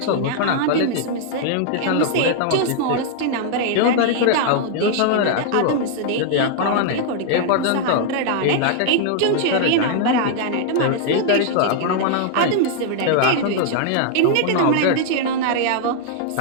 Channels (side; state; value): both; different; correlation -0.01